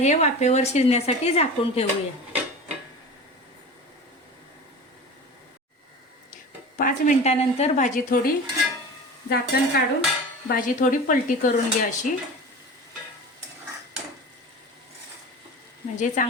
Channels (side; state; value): both; normal; correlation 0.33